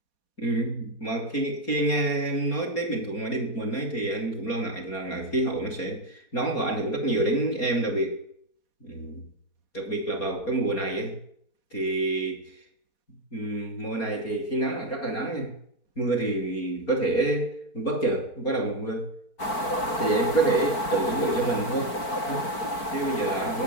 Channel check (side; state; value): right; late; 4.5 ms